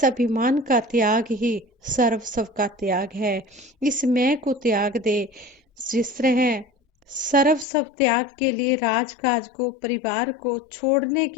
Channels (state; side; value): drops out; right; at 7.7 s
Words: अभिमान का त्याग ही सर्व सब का त्याग है। इस मैं को त्याग दे। जिस तरह सर्व सब त्याग के लिए राजकाज को, परिवार को छोड़ने